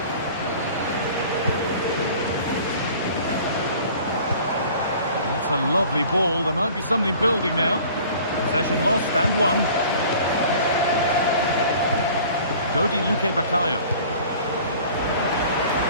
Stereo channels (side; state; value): both; inverted; correlation -0.47